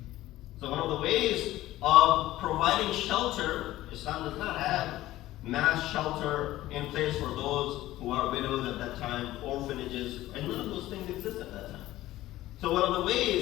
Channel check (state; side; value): quieter; right; 15.8 dB